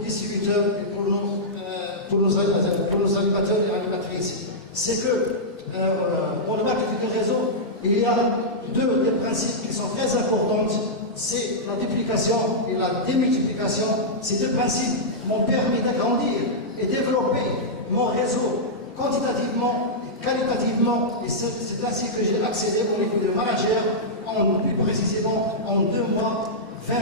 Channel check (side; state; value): both; normal; correlation -0.10